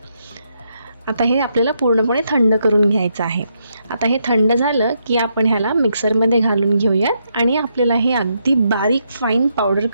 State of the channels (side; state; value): both; inverted; correlation -0.79